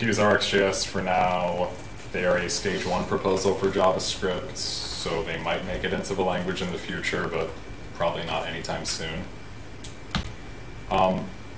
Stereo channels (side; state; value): both; identical; correlation 1.00